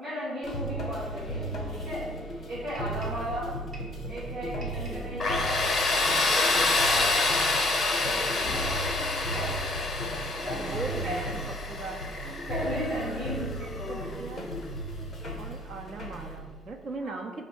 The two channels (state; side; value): normal; both; correlation 0.57